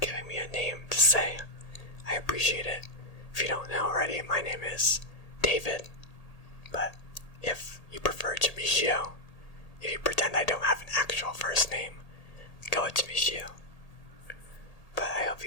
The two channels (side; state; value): right; late; 1.8 ms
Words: me a name to say. I appreciate it. If you don't know already, my name is David. But if you prefer Jamishio, if you pretend I don't have an actual first name, go with Jamishio. But I hope